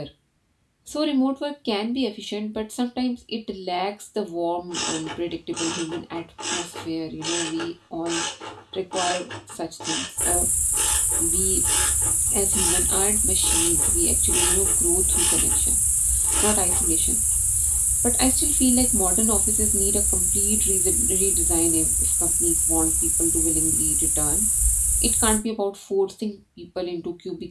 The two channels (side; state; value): both; identical; correlation 1.00